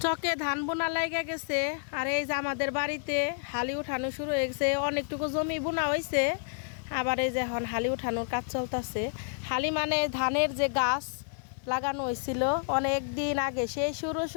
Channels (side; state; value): right; silent; 58 dB below the other